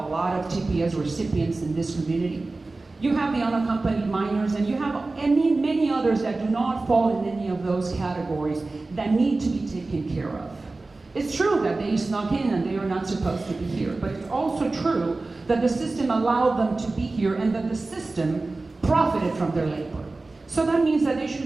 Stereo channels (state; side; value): quieter; left; 3.4 dB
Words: lot of TPS recipients in this community. You have the unaccompanied minors, and you have many others that do not fall in any of those categories that need to be taken care of. It's true that they snuck in and they are not supposed to be here, but it's also true that the system allowed them to be here and that the system profited from their labor. So that means that they